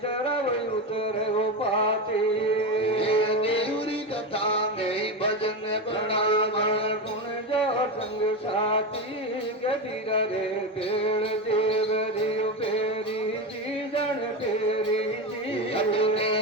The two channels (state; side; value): normal; both; correlation 0.17